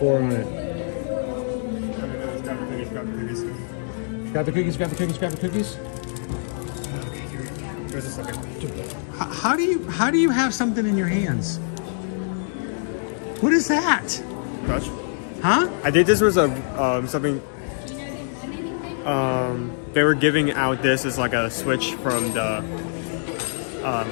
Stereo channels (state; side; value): silent; right; digital silence